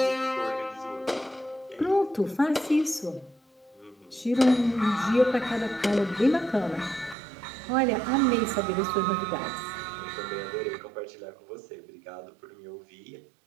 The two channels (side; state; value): left; drops out; at 7.2 s